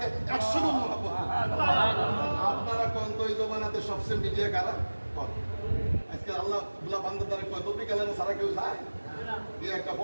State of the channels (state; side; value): inverted; both; correlation -1.00